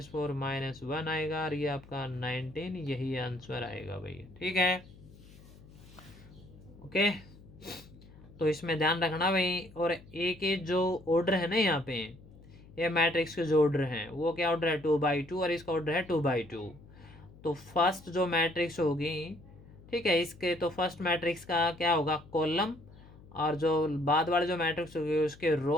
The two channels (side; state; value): left; noise; hum, 21 dB below the sound